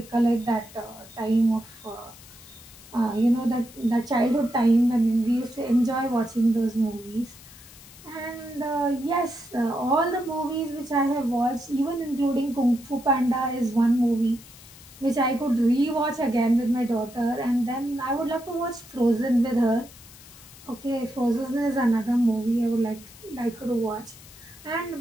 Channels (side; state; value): left; noise; hiss, 20 dB below the sound